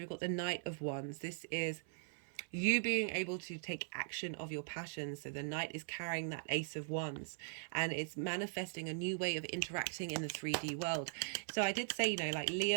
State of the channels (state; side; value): silent; left; 51 dB below the other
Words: got the Knight of Wands. This is you being able to take action of your passions. So the Knight is carrying that Ace of Wands, and it's manifesting a new way of interacting in the 3D world. So I did say, like